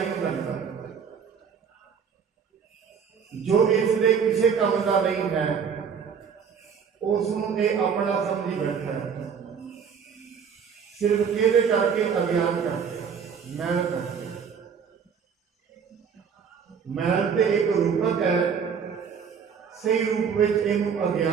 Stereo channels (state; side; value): quieter; left; 6.8 dB